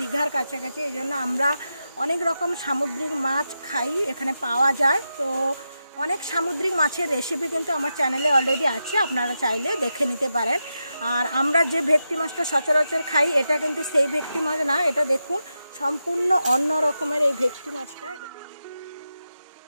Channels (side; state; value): both; inverted; correlation -0.89